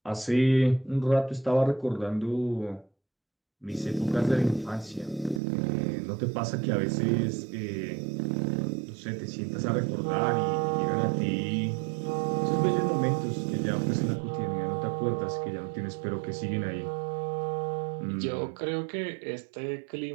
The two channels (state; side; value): drops out; left; at 5.4 s